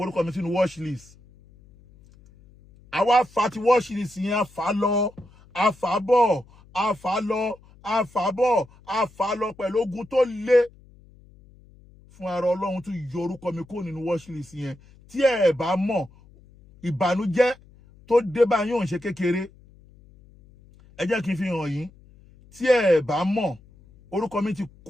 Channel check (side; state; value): left; noise; hum, 26 dB below the sound